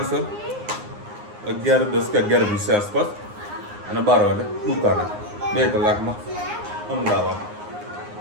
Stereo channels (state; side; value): late; left; 9.7 ms